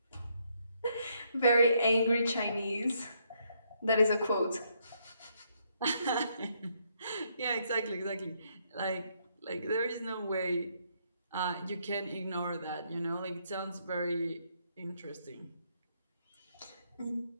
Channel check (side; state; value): both; inverted; correlation -0.73